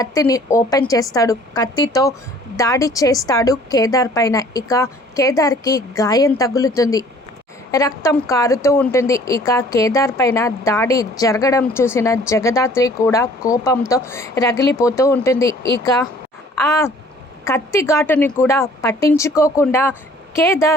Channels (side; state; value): both; normal; correlation 0.54